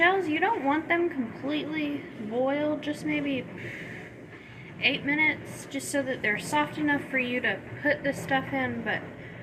you don't want them completely boiled, just maybe 8 minutes, just so that they're soft enough for you to put the stuff in, but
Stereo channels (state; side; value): identical; both; correlation 1.00